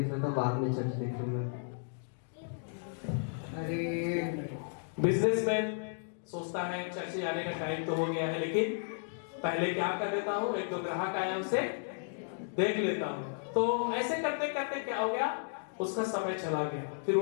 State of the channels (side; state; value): right; silent; digital silence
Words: लेता हूँ, बाद में चर्च देख लूंगा। अरे बिजनेसमैन सोचता है चर्च जाने का टाइम तो हो गया है, लेकिन पहले क्या कर लेता हूँ, एक दो ग्राहक आया उसे देख लेता हूँ। तो ऐसे करते करते क्या हो गया, उसका समय चला गया। फिर